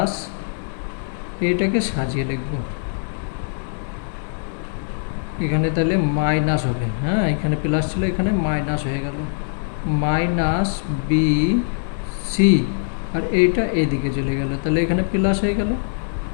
এইটাকে সাজিয়ে লিখব, এখানে তাহলে মাইনাস হবে, হ্যাঁ, এখানে প্লাস ছিল, এখানে মাইনাস হয়ে গেল, মাইনাস বি সি, আর এইটা এইদিকে চলে গেল, তাহলে এখানে প্লাস হয়ে গেল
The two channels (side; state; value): right; silent; digital silence